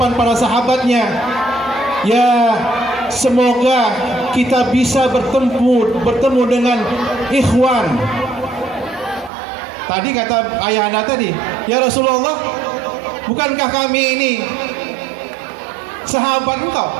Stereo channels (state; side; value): drops out; left; at 9.3 s